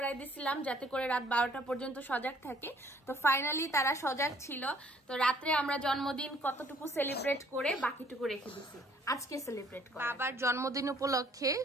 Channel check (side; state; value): both; normal; correlation 0.60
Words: দিছিলাম যাতে করে রাত 12টা পর্যন্ত সজাগ থাকে। তো ফাইনালি তারা সজাগ ছিল। তো রাত্রে আমরা জন্মদিন কতটুকু সেলিব্রেট করে বাকিটুকু রেখে দিছি আজকে সেলিব্রেট করে। বাবার জন্মদিন উপলক্ষে